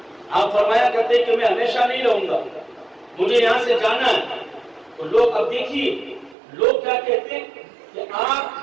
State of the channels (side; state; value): left; drops out; at 6.4 s